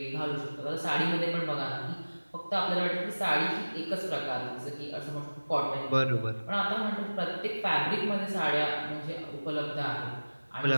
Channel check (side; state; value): both; inverted; correlation -1.00